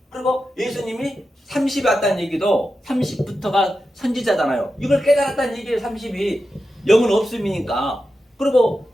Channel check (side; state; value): both; normal; correlation 0.90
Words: 그리고 예수님이 30이 왔다는 얘기도 30부터가 선지자잖아요. 이걸 깨달았다는 얘기예요. 30이. 영은 없음이니까. 그리고